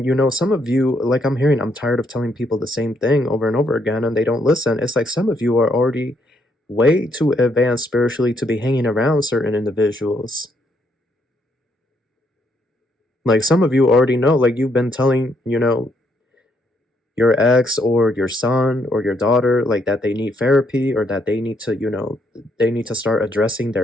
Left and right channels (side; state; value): both; normal; correlation 0.73